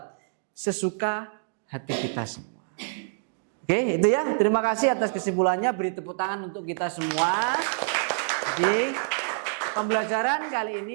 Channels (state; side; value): silent; left; digital silence